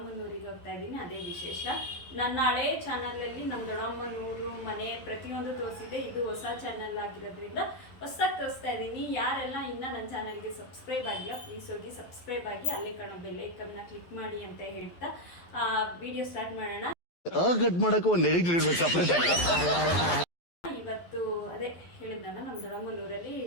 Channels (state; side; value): late; right; 12 ms